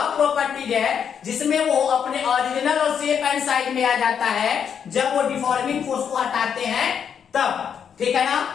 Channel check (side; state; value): right; quieter; 7.7 dB